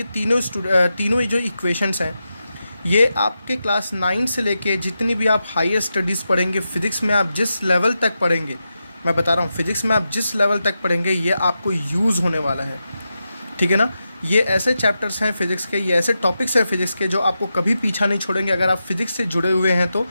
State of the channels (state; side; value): inverted; both; correlation -0.89